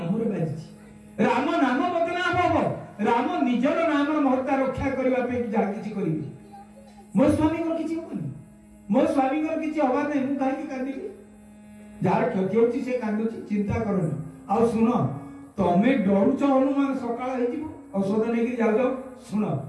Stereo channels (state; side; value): identical; both; correlation 1.00